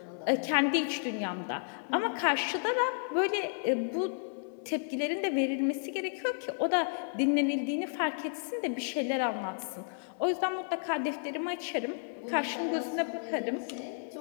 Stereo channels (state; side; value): silent; right; 56 dB below the other